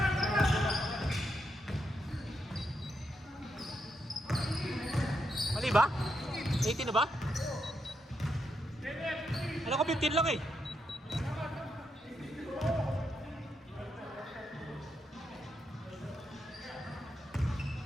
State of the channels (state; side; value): normal; both; correlation 0.82